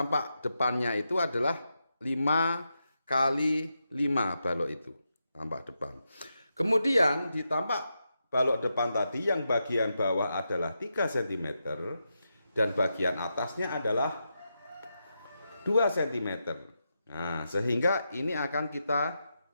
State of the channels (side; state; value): both; inverted; correlation -0.86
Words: depannya itu adalah 5x5 balok itu, tampak depan. Kemudian di tampak balok depan tadi yang bagian bawah adalah 3 cm dan bagian atasnya adalah 2 cm. Nah, sehingga ini akan kita